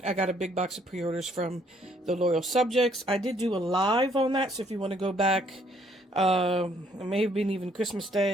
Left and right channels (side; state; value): both; normal; correlation 0.66